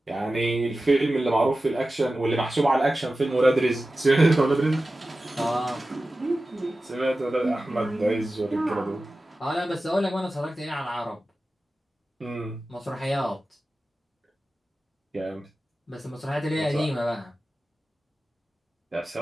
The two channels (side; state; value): both; normal; correlation 0.95